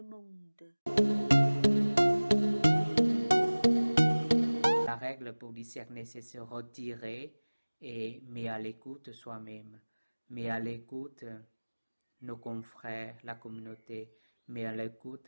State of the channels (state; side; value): inverted; both; correlation -1.00